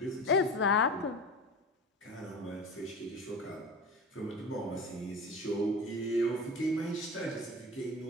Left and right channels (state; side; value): normal; both; correlation 0.31